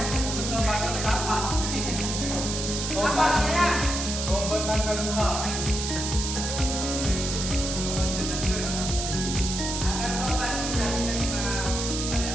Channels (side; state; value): right; noise; hiss, 4 dB below the sound